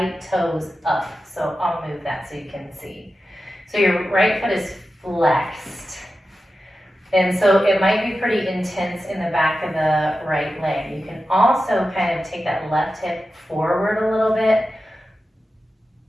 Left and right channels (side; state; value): both; normal; correlation 0.92